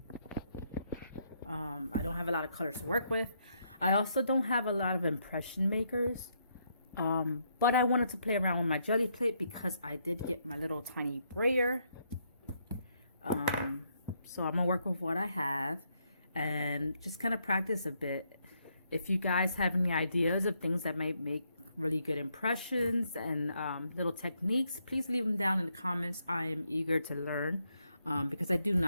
I don't have a lot of colors to work with. I also don't have a lot of impression makers. But I wanted to play around with my jelly plate because I did get my little tiny brayer. So I'm gonna work with what I have and just kind of practice a bit. If you guys have any ideas of things that might make really good impressions and little techniques, please leave them down in the comments. I am eager to learn because I do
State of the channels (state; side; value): inverted; both; correlation -0.75